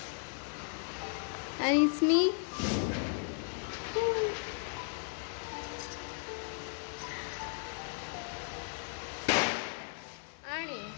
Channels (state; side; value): silent; right; 54 dB below the other